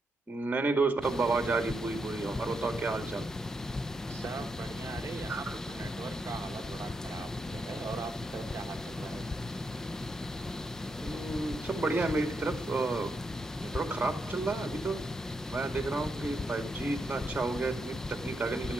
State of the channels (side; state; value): both; normal; correlation 0.82